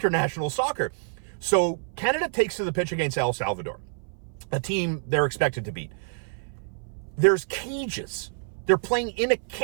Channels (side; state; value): left; silent; 57 dB below the other